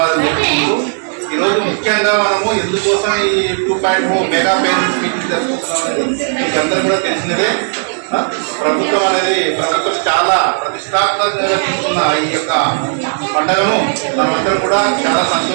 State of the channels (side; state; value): left; silent; 70 dB below the other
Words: చెప్పుకుంటూ ఈరోజు ముఖ్యంగా మనము ఎందుకోసం ఈ 2.0 మెగా పేరెంట్స్ మీటింగ్ జరుపుకుంటున్నాం అనేది మీకు అందరూ కూడా తెలిసినదే. ప్రభుత్వం చాలా ప్రతిష్టాత్మకంగా తీసుకున్న ఈ యొక్క పండుగను మనమందరం కూడా చాలా